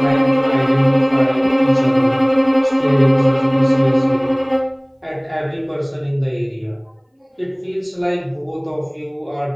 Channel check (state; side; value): identical; both; correlation 1.00